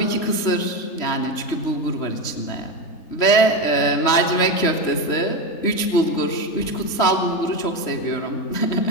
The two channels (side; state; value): right; late; 3.1 ms